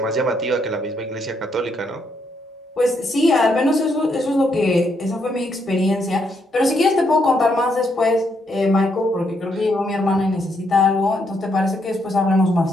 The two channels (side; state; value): both; normal; correlation 0.76